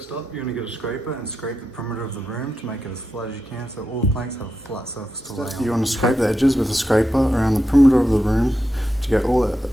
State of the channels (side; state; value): both; normal; correlation 0.87